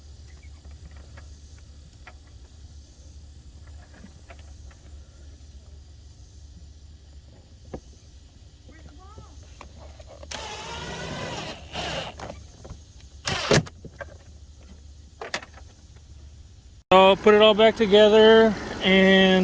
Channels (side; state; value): both; identical; correlation 1.00